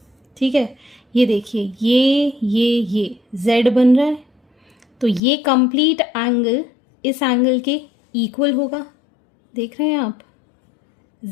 ठीक है, ये देखिए ये Z बन रहा है, तो ये कंप्लीट एंगल इस एंगल के इक्वल होगा। देख रहे हैं आप,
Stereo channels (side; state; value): right; drops out; at 5.2 s